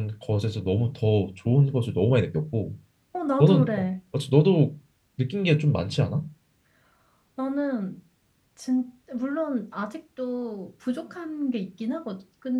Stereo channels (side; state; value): both; identical; correlation 1.00